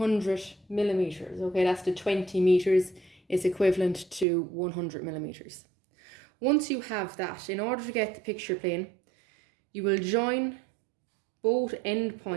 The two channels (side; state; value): left; drops out; at 4.2 s